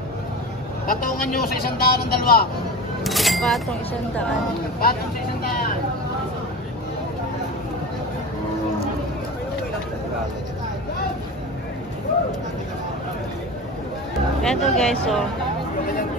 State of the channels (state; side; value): normal; both; correlation 0.30